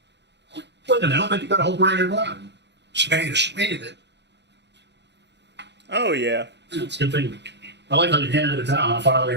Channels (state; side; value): late; left; 0.50 ms